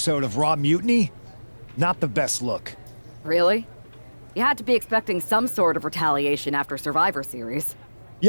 of Raw Mutiny? Not the best look. Really? You had to be expecting some sort of retaliation after Survivor Series.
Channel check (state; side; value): inverted; both; correlation -1.00